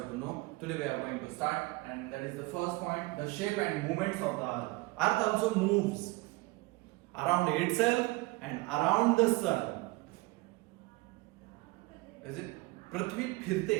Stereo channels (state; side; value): quieter; left; 22.9 dB